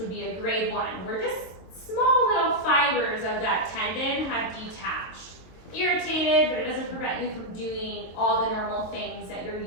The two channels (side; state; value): right; late; 23 ms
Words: be a grade 1, where just small little fibers of that tendon have detached. Irritated, but it doesn't prevent you from doing all the normal things that you're